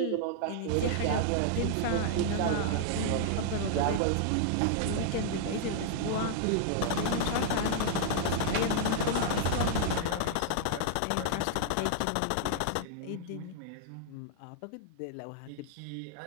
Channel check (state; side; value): different; both; correlation -0.01